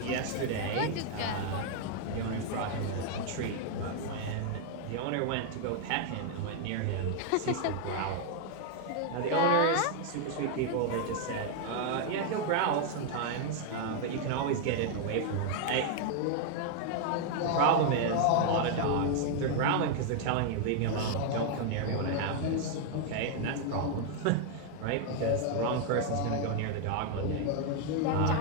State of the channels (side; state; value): both; different; correlation 0.00